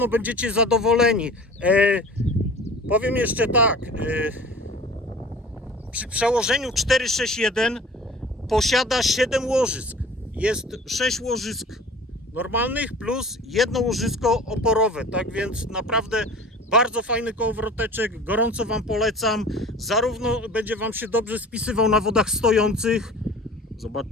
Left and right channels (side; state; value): both; normal; correlation 0.42